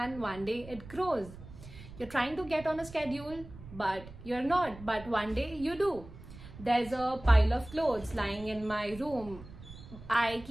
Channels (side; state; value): right; noise; rumble, 16 dB below the sound